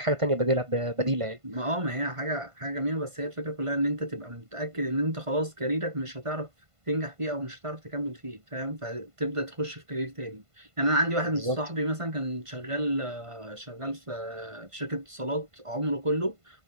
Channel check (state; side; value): late; left; 1.5 ms